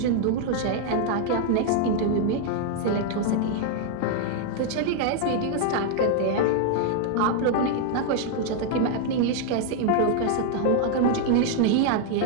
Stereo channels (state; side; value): different; both; correlation 0.00